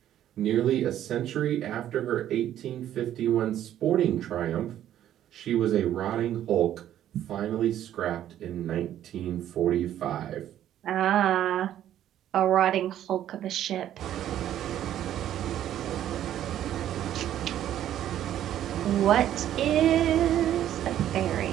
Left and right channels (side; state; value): left; quieter; 11.5 dB